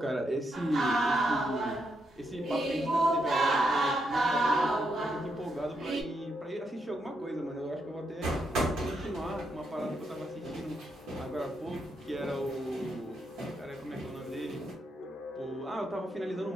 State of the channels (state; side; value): normal; both; correlation 0.80